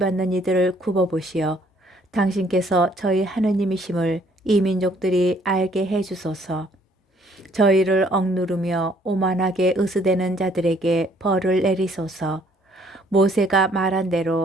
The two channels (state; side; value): normal; both; correlation 0.63